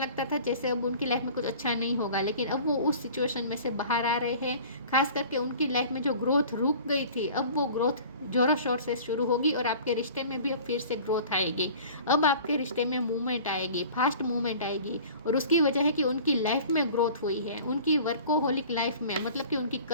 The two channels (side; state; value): both; inverted; correlation -0.44